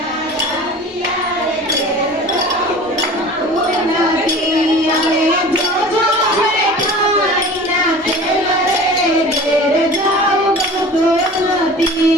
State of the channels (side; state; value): both; normal; correlation 0.40